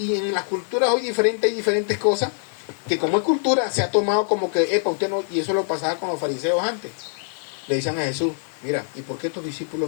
en las culturas hoy hay diferentes cosas que como es cultura se ha tomado como que, usted no, y eso lo pasaba con los fariseos antes. Le dicen a Jesús, mira, ¿y por qué estos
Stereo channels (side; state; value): right; silent; 63 dB below the other